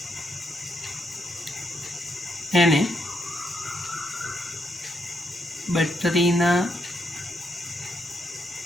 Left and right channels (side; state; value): both; normal; correlation 0.78